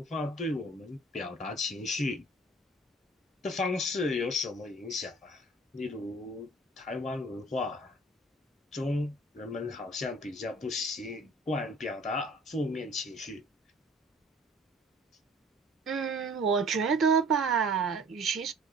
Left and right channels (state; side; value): normal; both; correlation 0.51